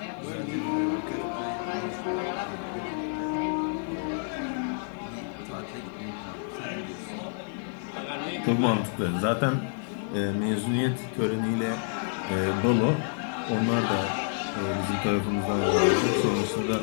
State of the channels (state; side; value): silent; right; 59 dB below the other